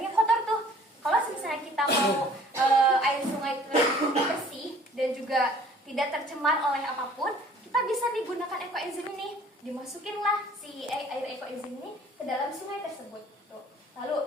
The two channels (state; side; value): normal; both; correlation 0.53